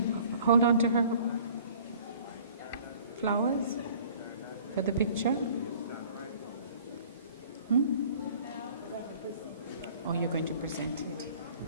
hold on to her flowers for the picture? Or you're going to present it?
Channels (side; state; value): both; inverted; correlation -0.51